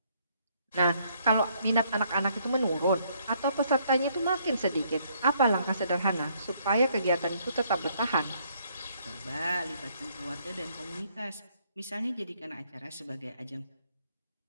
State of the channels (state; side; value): inverted; both; correlation -0.68